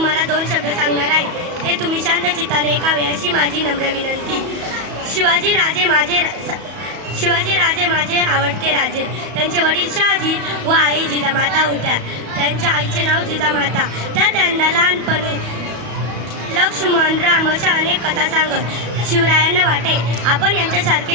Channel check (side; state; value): left; late; 34 ms